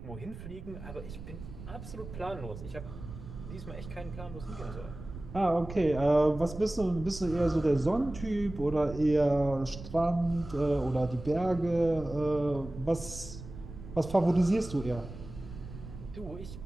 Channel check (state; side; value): noise; right; rumble, 12 dB below the sound